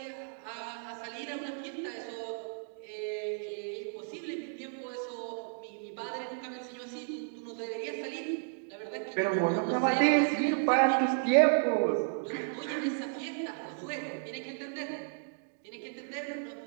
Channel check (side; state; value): left; silent; digital silence